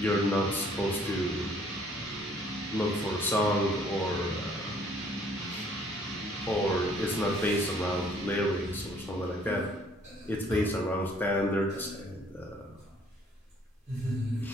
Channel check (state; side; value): normal; both; correlation 0.60